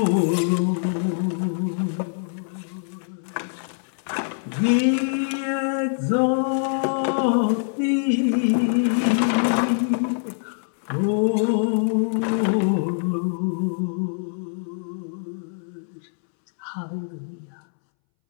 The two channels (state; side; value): silent; right; 63 dB below the other